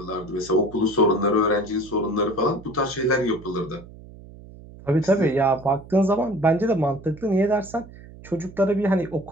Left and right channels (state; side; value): noise; right; hum, 19 dB below the sound